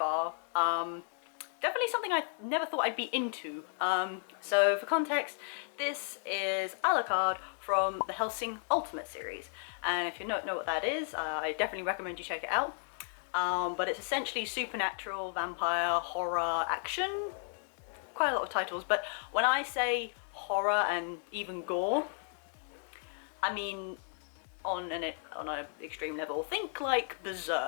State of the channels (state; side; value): silent; right; 55 dB below the other